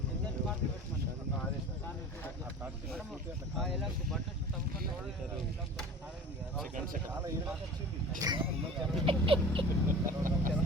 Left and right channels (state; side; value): normal; both; correlation 0.38